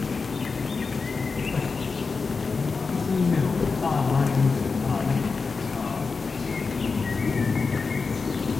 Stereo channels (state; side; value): quieter; right; 4.6 dB